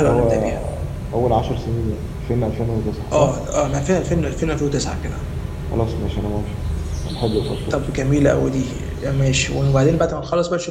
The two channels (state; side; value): identical; both; correlation 1.00